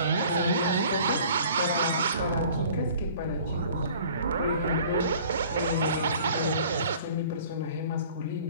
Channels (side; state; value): both; inverted; correlation -0.50